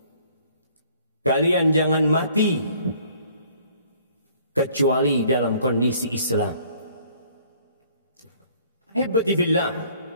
Kalian jangan mati kecuali dalam kondisi Islam. Ahibati fillah,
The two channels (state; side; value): inverted; both; correlation -0.58